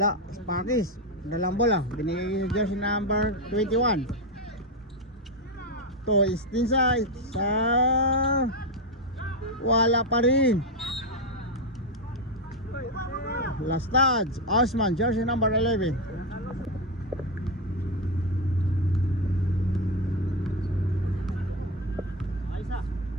Sparkis. Dalang bola. Binigay sa jersey number 21. To Istinsa. Wala pa rin. Last touch. Osman. Jersey number 11.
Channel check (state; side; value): normal; both; correlation 0.09